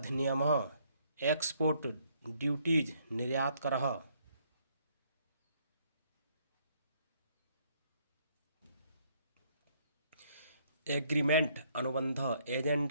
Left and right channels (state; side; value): inverted; both; correlation -0.67